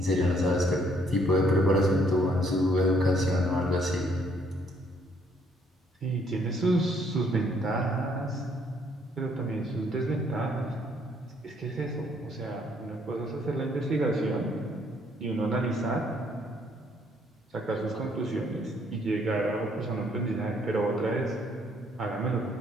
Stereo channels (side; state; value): both; normal; correlation 0.67